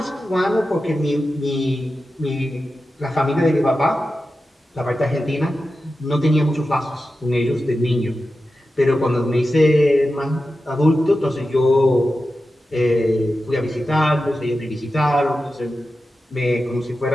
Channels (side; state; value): both; normal; correlation 0.92